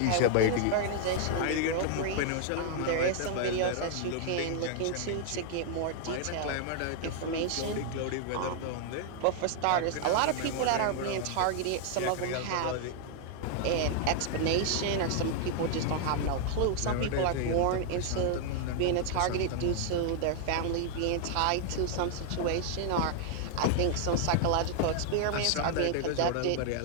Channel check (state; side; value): different; both; correlation 0.00